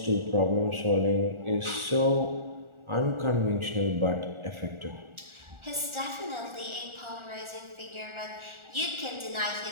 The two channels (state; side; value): late; left; 1.4 ms